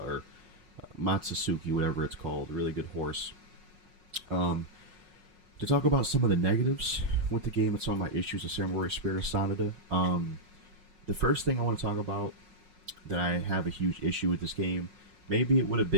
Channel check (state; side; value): late; left; 5.5 ms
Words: Matsusuki, whatever it's called. A really good horse. To talk about some of the negatives with the game and some of my issues with Samurai Spirit of Sanada, the first thing I want to talk about that I have a huge issue with this game, maybe it would have